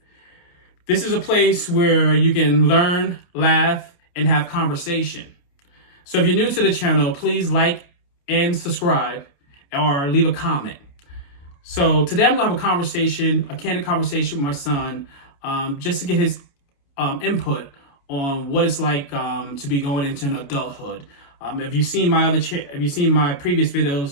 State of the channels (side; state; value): right; late; 29 ms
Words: This is a place where you can learn, laugh, and have conversation. So if you're new to the channel, please like and subscribe or leave a comment. So today I'm going to have a candid conversation with my son, just to get his input on what it's like to be going into an adulthood. If you've seen my previous